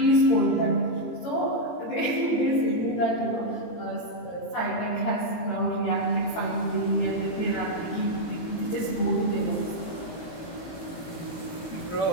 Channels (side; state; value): right; late; 18 ms